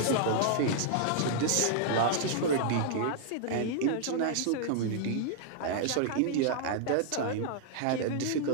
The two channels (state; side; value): different; both; correlation -0.01